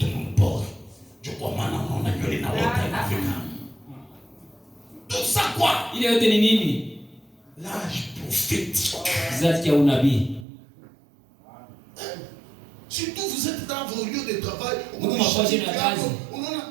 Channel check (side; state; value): left; drops out; at 10.5 s